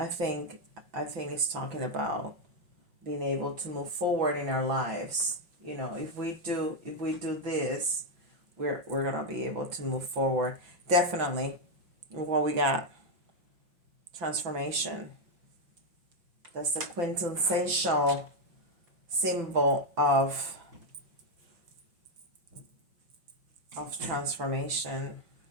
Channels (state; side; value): late; left; 5.9 ms